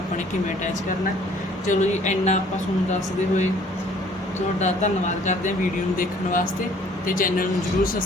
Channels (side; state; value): both; normal; correlation 0.57